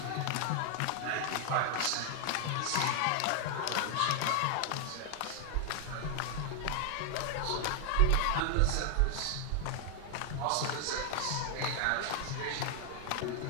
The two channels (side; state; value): both; different; correlation 0.00